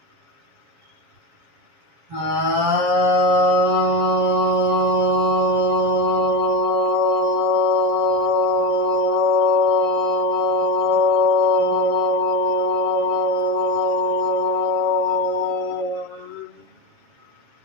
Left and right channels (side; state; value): left; late; 7.3 ms